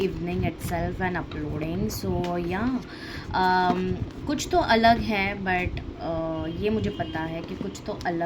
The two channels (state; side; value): identical; both; correlation 1.00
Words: evening itself and uploading. So yeah कुछ तो अलग है बट ये मुझे पता है कि कुछ तो